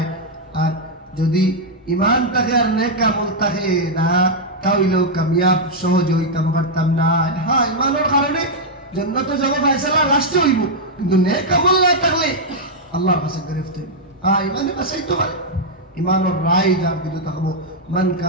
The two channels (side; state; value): both; normal; correlation -0.03